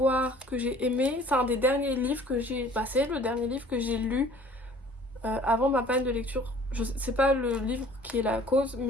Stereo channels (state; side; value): normal; both; correlation 0.51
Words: que j'ai aimé, c'est un des derniers livres que j'ai passé, le dernier livre que j'ai lu avant ma panne de lecture. C'est pas le livre qui est la cause,